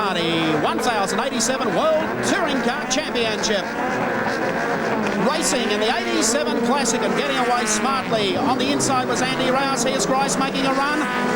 1087 World Touring Car Championship. Racing in the 87 Classic and getting away smartly. On the inside was Andy Rouse. Here's Grice making a run.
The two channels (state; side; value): identical; both; correlation 1.00